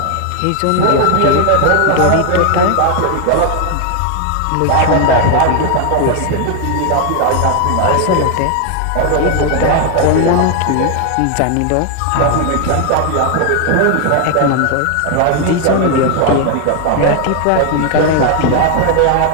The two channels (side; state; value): both; different; correlation 0.00